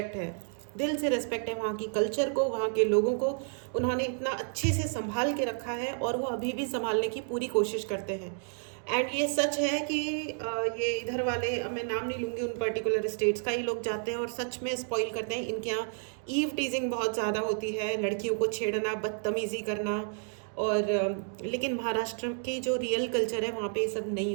है, दिल से रेस्पेक्ट है वहाँ की कल्चर को, वहाँ के लोगों को। उन्होंने इतना अच्छे से संभाल के रखा है और वो अभी भी संभालने की पूरी कोशिश करते हैं। एंड ये सच है कि ये इधर वाले, मैं नाम नहीं लूँगी उन पर्टिकुलर स्टेट्स का, ही लोग जाते हैं और सच में स्पॉइल करते हैं। इनके यहाँ ईव टीजिंग बहुत ज़्यादा होती है, लड़कियों को छेड़ना, बदतमीज़ी करना। और लेकिन महाराष्ट्र की जो रियल कल्चर है वहाँ पे ये सब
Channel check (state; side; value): silent; left; 57 dB below the other